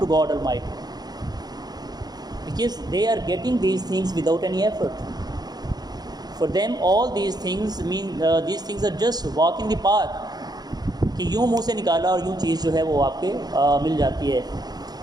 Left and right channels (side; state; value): left; late; 0.19 ms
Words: God almighty, because they are getting these things without any effort. For them all these things these things are just walk in the park, کہ یوں منہ سے نکالا اور یوں چیز جو ہے وہ آپ کے مل جاتی ہے.